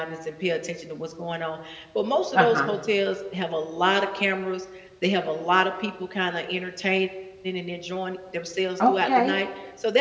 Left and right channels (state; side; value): identical; both; correlation 1.00